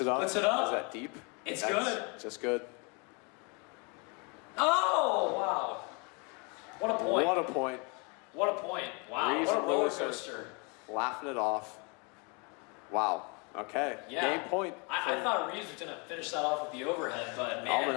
it up. Puts it up. Is that deep? That's good. Just good. Oh, wow. What a point. What a point. What a point. Wow. Reeves what a and roller Lewis coaster. Laughing it off. Wow. Okay. Yeah. Game point. I thought Reeves was going to finish that off with the overhead, but man.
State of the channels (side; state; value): right; quieter; 32.3 dB